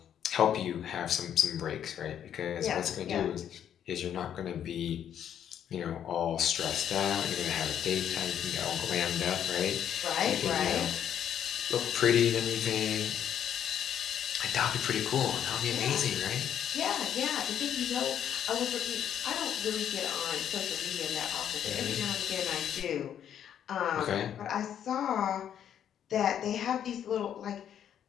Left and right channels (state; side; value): quieter; right; 9.6 dB